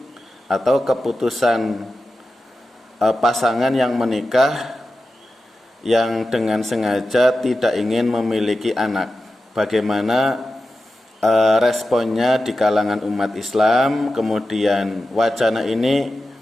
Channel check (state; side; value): normal; both; correlation 0.92